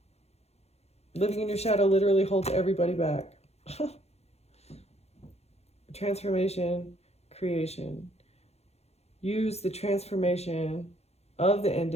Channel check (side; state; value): right; late; 0.31 ms